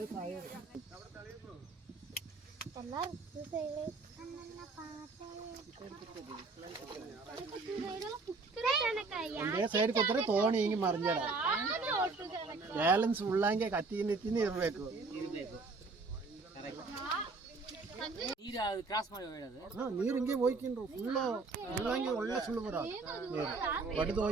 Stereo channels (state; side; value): quieter; left; 3.9 dB